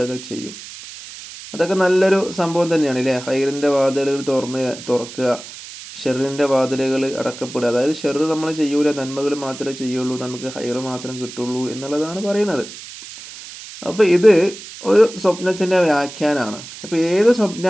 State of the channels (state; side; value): noise; right; hiss, 14 dB below the sound